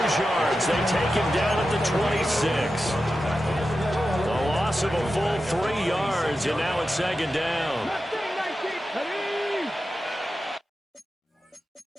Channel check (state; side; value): normal; both; correlation 0.91